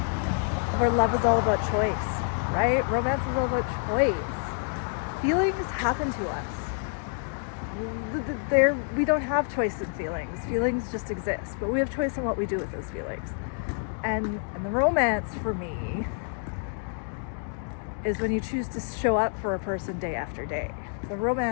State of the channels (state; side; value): silent; right; 58 dB below the other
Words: love is all about choice, right? Romance is all about choice. Feelings happen to us. We don't have choice in feelings. Feelings just exist, but we have choice in what we do with those feelings. And the romance for me is when you choose to show up for a person day after day. The